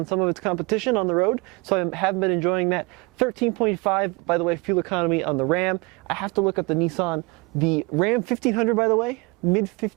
some of its competition on the road, so I have been enjoying that. 13.5, by the way, fuel economy on the Ram. I have to look up the Nissan. The Ram 1500, by the way,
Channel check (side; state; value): left; quieter; 27.5 dB